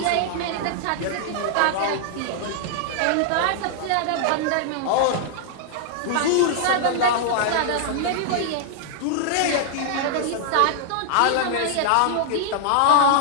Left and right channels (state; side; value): different; both; correlation -0.01